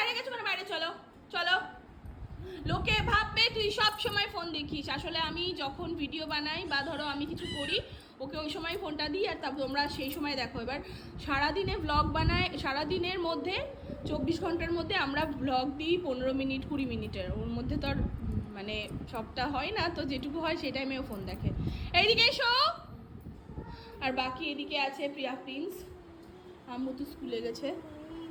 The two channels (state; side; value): identical; both; correlation 1.00